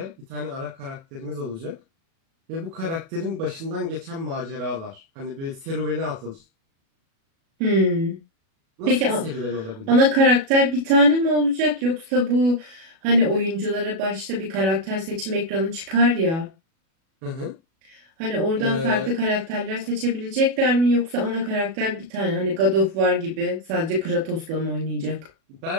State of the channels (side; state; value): left; late; 37 ms